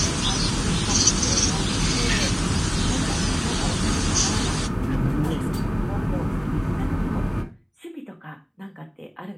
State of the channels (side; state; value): both; identical; correlation 1.00